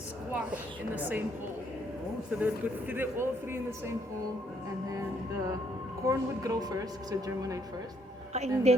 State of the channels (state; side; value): normal; both; correlation 0.70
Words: in the same hole. So they would put all three in the same hole, and then the corn would grow first, so germinate first. And